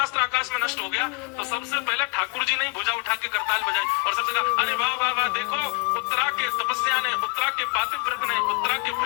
आकाश में नष्ट हो गया तो सबसे पहले ठाकुर जी ने भुजा उठा के करताल बजाई और सबसे कहा, अरे वाह वाह वाह, देखो उत्तरा के तपस्या ने, उत्तरा के पातिव्रत ने, उत्तरा के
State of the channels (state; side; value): quieter; right; 30.3 dB